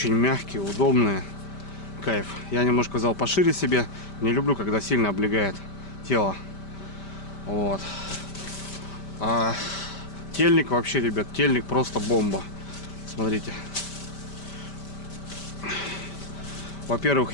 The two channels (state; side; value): late; right; 5.1 ms